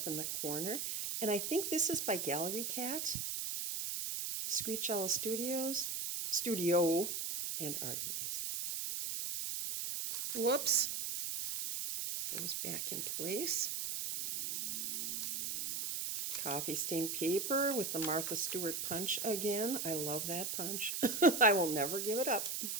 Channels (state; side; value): noise; right; hiss, 2 dB below the sound